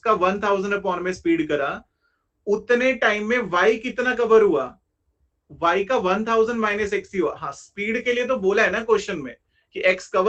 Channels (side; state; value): both; identical; correlation 1.00